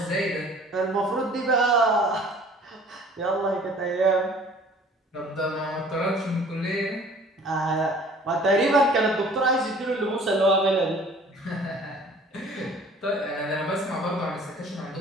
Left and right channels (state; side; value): normal; both; correlation 0.51